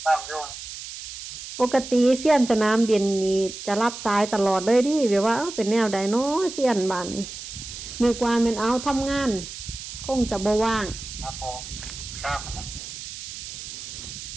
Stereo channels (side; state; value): right; noise; hiss, 10 dB below the sound